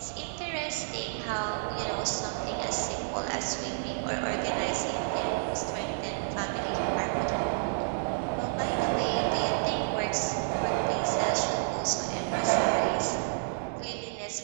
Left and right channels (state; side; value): silent; left; digital silence